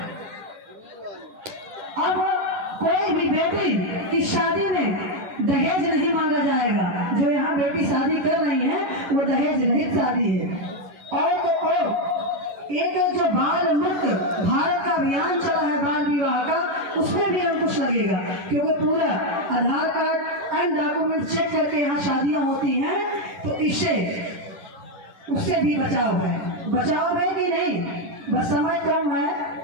अब कोई भी बेटी की शादी में दहेज नहीं मांगा जाएगा। जो यहाँ बेटी शादी कर रही है वो दहेज रहित शादी है। और तो और एक जो बाल मुक्त भारत का अभियान चला है बाल विवाह का, उसमें भी अंकुश लगेगा, क्योंकि पूरा आधार कार्ड एंड डॉक्यूमेंट चेक करके यहाँ शादियां होती हैं। तो इससे उससे भी बचाव है कि नहीं? बस समय कम है।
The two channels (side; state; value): left; late; 10 ms